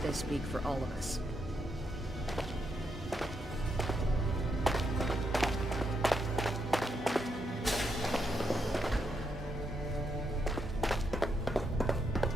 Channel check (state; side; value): normal; both; correlation 0.80